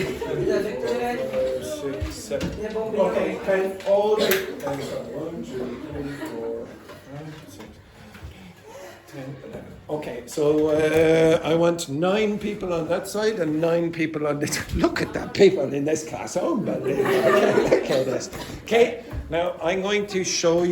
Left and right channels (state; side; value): identical; both; correlation 1.00